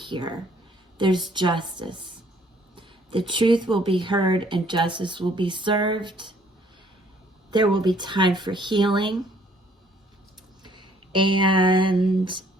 There's justice. The truth will be heard and justice will be served. There will be time for healing. And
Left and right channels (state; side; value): normal; both; correlation 0.62